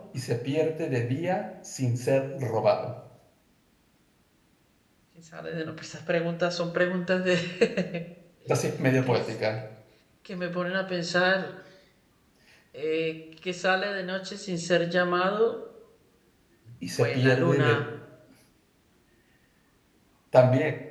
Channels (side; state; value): both; identical; correlation 1.00